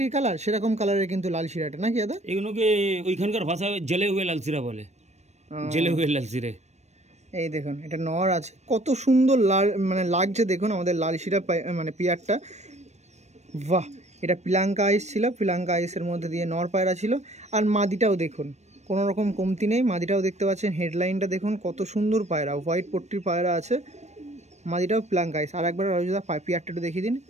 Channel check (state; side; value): late; left; 0.32 ms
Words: কালার, সেরকম কালারের কিন্তু লাল শিরাটা নাকি দাদা? এগুলোকে ওইখানকার ভাষায় জেলে হুয়ে লাল শিরা বলে, জেলে হুয়ে লাল শিরে। এই দেখুন এটা নর আছে, কত সুন্দর লাল মানে লাগছে দেখুন আমাদের লাল শিরা মানে পেয়ারটা। বাহ, এটা পিলাঙ্কা আইস ছিল, পিলাঙ্কা আইসের মধ্যে দিয়ে নর পায়রা ছিল। আর মাদিটাও দেখুন কোনো রকম কমতি নেই, মাদিটাও দেখতে পাচ্ছেন, হেডলাইনটা দেখুন কত সুন্দর পায়রা, হোয়াইট পট্টির পায়রা আছে, মাদিটাও পিলাঙ্কা আইস। আর একবার রাজুদা পেয়ারটা একটু দেখিয়ে দিন।